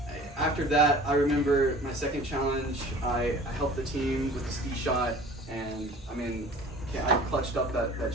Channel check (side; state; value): both; normal; correlation 0.45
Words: after that, I remember my second challenge, I helped the team with the ski shot, and I mean, I clutched up that